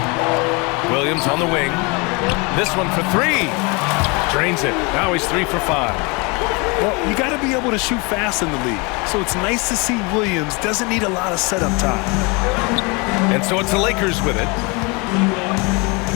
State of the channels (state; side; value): quieter; right; 29.1 dB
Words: Williams on the wing. This one for three. Drains it. Now he's 3 for 5. Well, you got to be able to shoot fast in the league. So it's nice to see Williams doesn't need a lot of setup time. And so it's the Lakers with it.